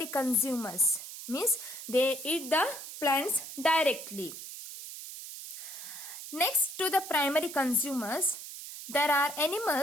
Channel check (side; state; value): right; noise; hiss, 11 dB below the sound